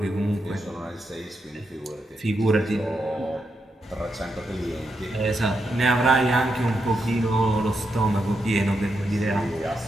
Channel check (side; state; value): both; normal; correlation 0.84